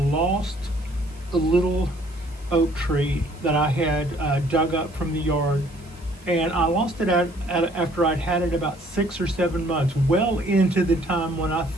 a little oak tree that I had dug up from the yard, and I lost it after I'd had it about 6 or 7 months, well into the time when I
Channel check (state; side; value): noise; right; hiss, 27 dB below the sound